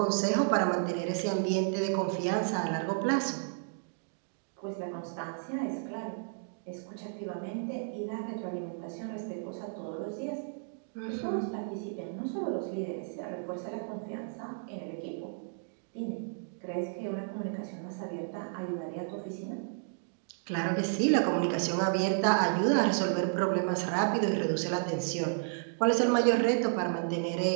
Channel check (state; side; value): silent; left; digital silence